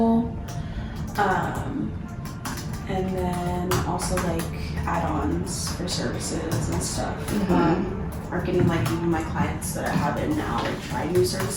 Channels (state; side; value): identical; both; correlation 1.00